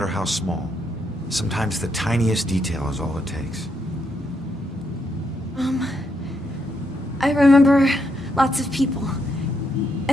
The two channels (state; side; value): normal; both; correlation 0.78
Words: how small. Sometimes the tiniest detail is all it takes. I remember lots of people.